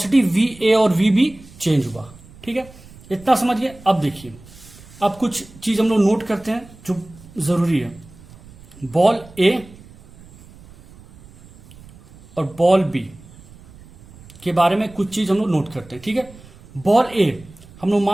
वी ए और वी बी चेंज हुआ। ठीक है, इतना समझिए। अब देखिए, अब कुछ चीज हम लोग नोट करते हैं जो जरूरी है। बॉल ए और बॉल बी के बारे में कुछ चीज हम लोग नोट करते हैं। ठीक है, बॉल ए हम लोग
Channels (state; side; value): noise; right; rumble, 22 dB below the sound